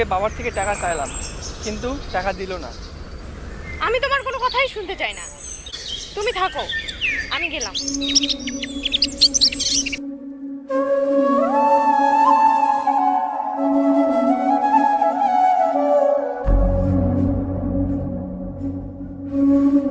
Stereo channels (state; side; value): identical; both; correlation 1.00